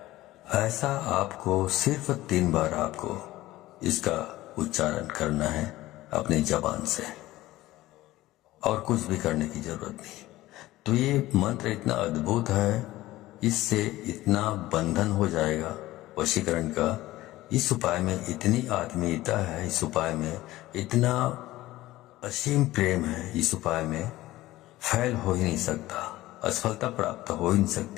ऐसा आपको सिर्फ 3 बार आपको इसका उच्चारण करना है अपनी जबान से, और कुछ भी करने की जरूरत नहीं। तो ये मंत्र इतना अद्भुत है, इससे इतना बंधन हो जाएगा वशीकरण का। इस उपाय में इतनी आत्मीयता है, इस उपाय में इतना असीम प्रेम है, इस उपाय में फैल हो ही नहीं सकता, असफलता प्राप्त हो ही नहीं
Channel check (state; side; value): quieter; right; 16.9 dB